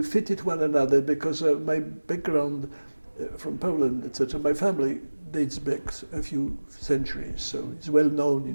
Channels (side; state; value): both; inverted; correlation -1.00